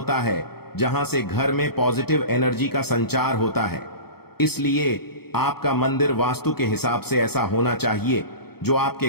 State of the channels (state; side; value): late; right; 0.96 ms